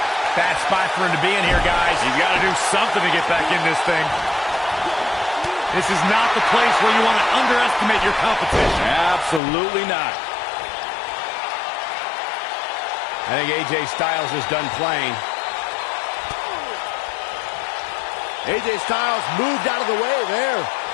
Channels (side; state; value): right; drops out; at 9.4 s